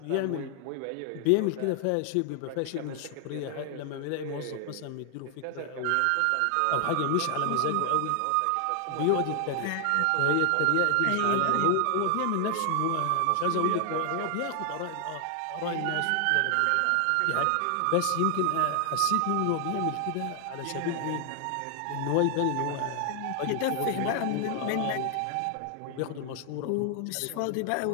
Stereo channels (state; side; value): different; both; correlation 0.00